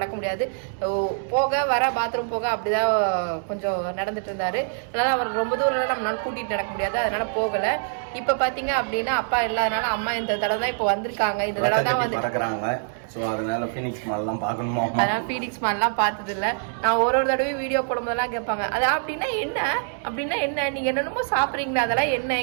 முடியாது, போக வர பாத்ரூம் போக அப்படிதான் கொஞ்சம் நடந்துட்டு இருந்தாரு. அதனால அவர் ரொம்ப தூரம் நம்மளால கூட்டிட்டு நடக்க முடியாது, அதனால போகல. இப்ப பாத்தீங்க அப்படின்னா அப்பா இல்லாதனால அம்மா இந்த தடவை தான் இப்ப வந்திருக்காங்க. இந்த தடவை தான் வந்து அதனால ஃபீனிக்ஸ் மால்லாம் பார்க்கணுமா? அதனால ஃபீனிக்ஸ் மால்லாம் பார்த்தது இல்லை. நான் ஒரு தடவையும் வீடியோ போடும்போதெல்லாம் கேட்பாங்க, அது அப்படின்னா என்ன நீங்க என்னென்னமோ சாப்பிட்றீங்களா, அதெல்லாம் என்ன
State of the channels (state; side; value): silent; left; 62 dB below the other